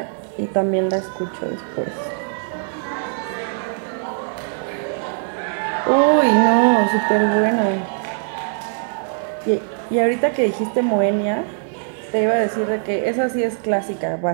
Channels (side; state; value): left; silent; 60 dB below the other